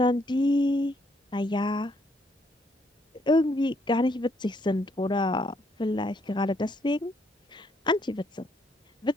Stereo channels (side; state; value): both; normal; correlation 0.71